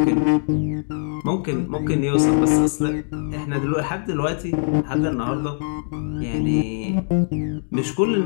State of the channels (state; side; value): silent; right; digital silence